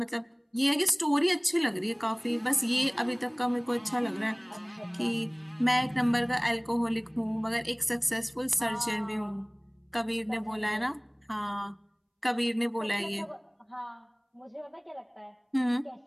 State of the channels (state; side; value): identical; both; correlation 1.00